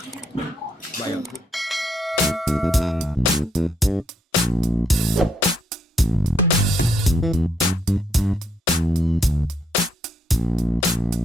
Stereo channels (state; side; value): normal; both; correlation 0.75